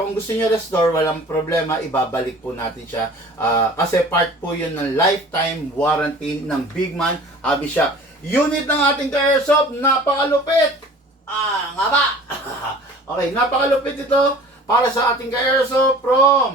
kung gusto nyo restore, walang problema, ibabalik po natin siya. Kasi part po yun ng lifetime warranty ng Bigman Hobby Shop. Unit ng ating ka-airsoft, napakalupit! Nga ba? Okay, napakalupit ito para sa ating ka-airsoft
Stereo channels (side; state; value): both; normal; correlation 0.45